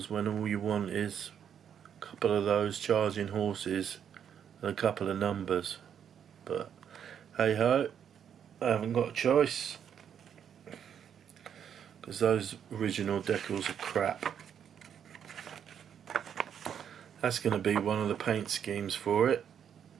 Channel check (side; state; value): left; quieter; 8.5 dB